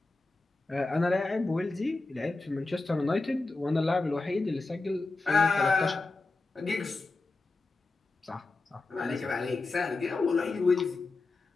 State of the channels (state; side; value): quieter; right; 3.4 dB